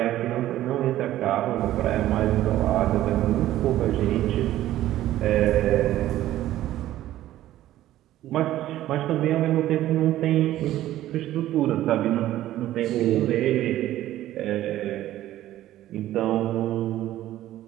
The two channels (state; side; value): quieter; left; 13.9 dB